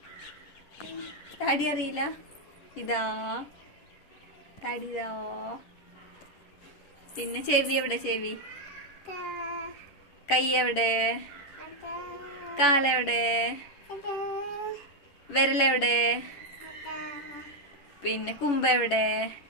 താടി അറിയില്ല? ഇതാ താടി ഇതാ. പിന്നെ ചെവി എവിടെ? ചെവി. കൈ എവിടെ? കാലെവിടെ? വിരലെവിടെ? പിന്നെ കുമ്പ എവിടെ?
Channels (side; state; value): right; late; 11 ms